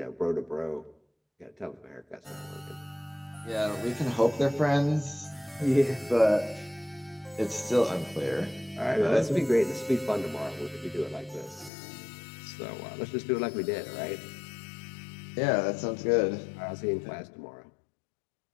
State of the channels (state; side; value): drops out; right; at 11.7 s